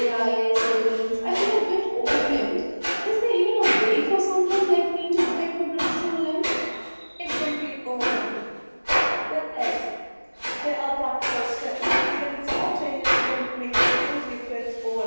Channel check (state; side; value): inverted; both; correlation -1.00